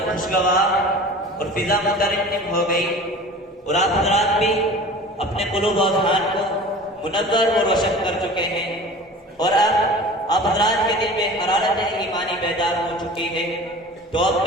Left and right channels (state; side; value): normal; both; correlation 0.40